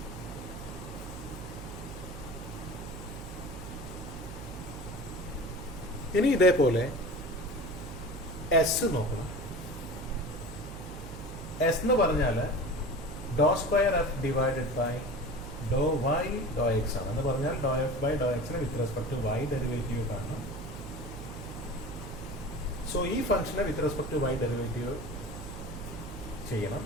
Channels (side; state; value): right; noise; hum, 11 dB below the sound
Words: ഇനി ഇതേപോലെ എസ് നോക്കണം. എസ് എന്ന് പറഞ്ഞാൽ doe square F divided by Dr Y doe X ആണ്. എന്ന് പറഞ്ഞാൽ ഡോ എഫ് ബൈ ഡോ എക്സിന് with respect to Y derivative കാണണം. സോ ഈ ഫംഗ്ഷനെ with respect to Y derivative ചെയ്യണം.